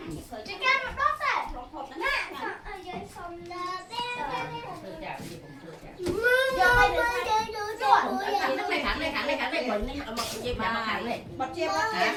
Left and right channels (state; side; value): identical; both; correlation 1.00